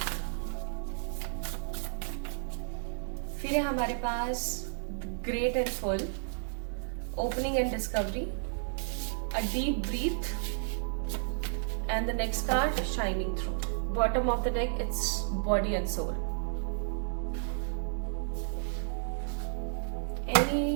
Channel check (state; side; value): silent; left; digital silence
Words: फिर है हमारे पास great and full, opening and discovery, a deep breath and the next card shining through. Bottom of the deck it's body and soul.